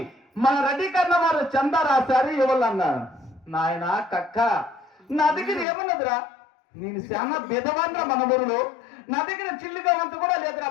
మన రెడ్డి కన్నా వారు చందా రాశారు ఇవ్వాలన్నారు. నాయన కక్క నా దగ్గర ఏమన్నదిరా, నేను చాలా బెదవాన్రా మన ఊరిలో, నా దగ్గర చిల్లిగా వంతు కూడా లేదురా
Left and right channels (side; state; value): right; drops out; at 5.7 s